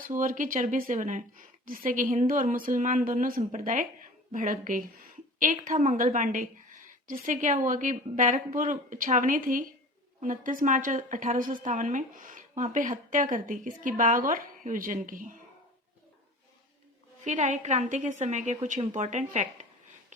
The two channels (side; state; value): both; normal; correlation 0.40